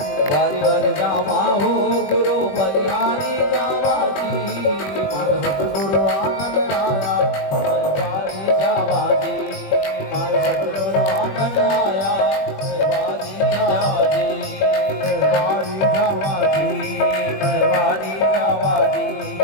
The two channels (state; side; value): late; right; 21 ms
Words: बारी बारी जावा हो गुरु बलिहारी जावा जी हर सतगुरु आंगन आया बारी जावा जी मारा सतगुरु आंगन आया बारी जावा जी बारी जावा जी बारी जावा जी